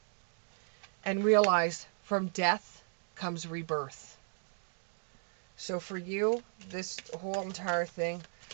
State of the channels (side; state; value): left; silent; digital silence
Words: and realize from death comes rebirth. So for you, this whole entire thing